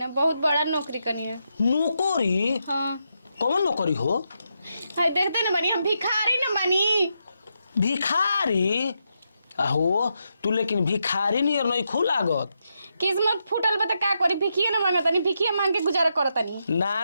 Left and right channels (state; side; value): inverted; both; correlation -0.83